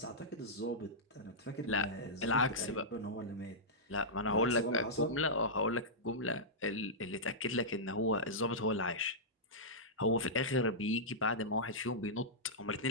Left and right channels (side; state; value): both; normal; correlation -0.12